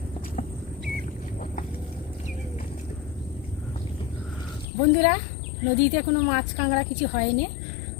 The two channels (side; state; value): right; drops out; at 4.7 s